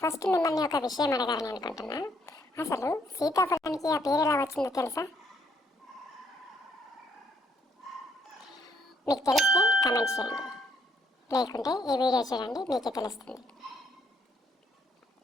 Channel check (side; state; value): both; normal; correlation 0.69